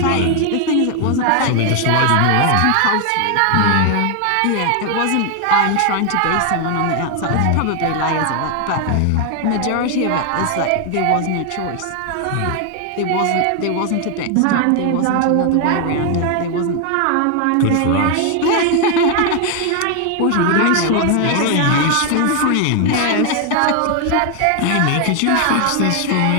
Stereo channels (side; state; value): both; different; correlation 0.01